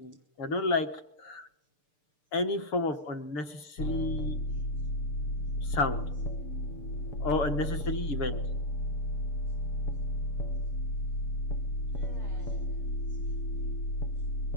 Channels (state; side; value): late; right; 6.7 ms